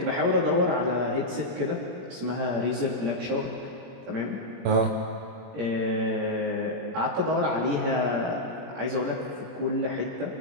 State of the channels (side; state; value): left; late; 21 ms